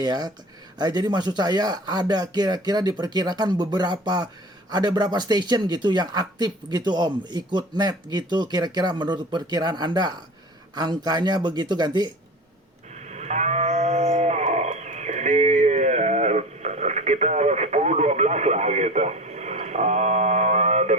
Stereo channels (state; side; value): normal; both; correlation 0.35